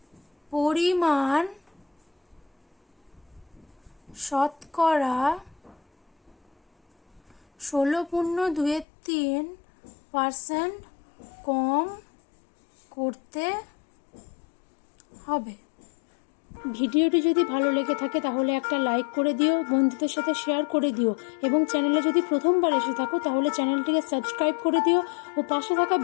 পরিমাণ শতকরা 16.23% কম করতে হবে। ভিডিওটি যদি ভালো লেগে থাকে তাহলে একটা লাইক করে দিও, বন্ধুদের সাথে শেয়ার করে দিও, এবং চ্যানেলে যদি প্রথমবার এসে থাকো তাহলে চ্যানেলটিকে সাবস্ক্রাইব করে দিও ও পাশে থাকা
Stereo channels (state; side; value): drops out; right; at 8.8 s